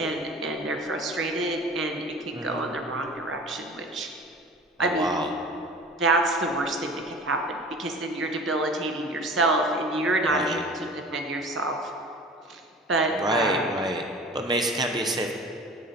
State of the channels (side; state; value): both; normal; correlation 0.41